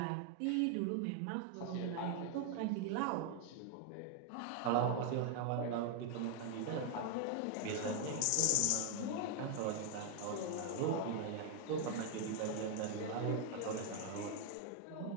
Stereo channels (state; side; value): different; both; correlation 0.00